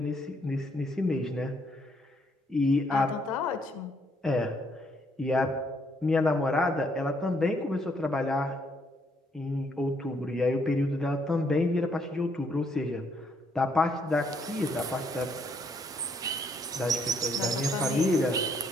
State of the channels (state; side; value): normal; both; correlation 0.70